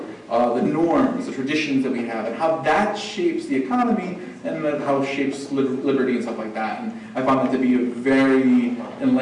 the norms, the traditions that we have, and how that shapes the economy, and then how it shapes liberty and stuff like that. And I found that to be a very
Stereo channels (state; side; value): identical; both; correlation 1.00